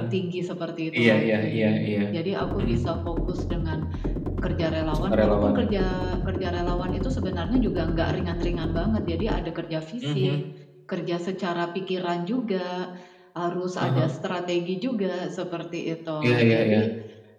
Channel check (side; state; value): both; identical; correlation 1.00